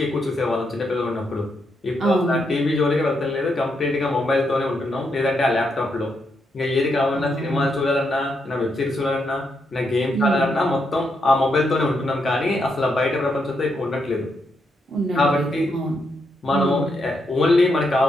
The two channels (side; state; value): both; normal; correlation 0.80